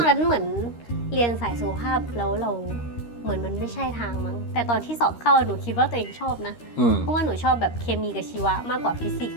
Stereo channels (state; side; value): late; right; 13 ms